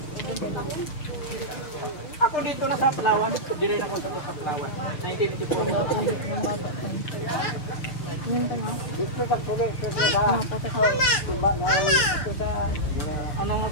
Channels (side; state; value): right; late; 6.7 ms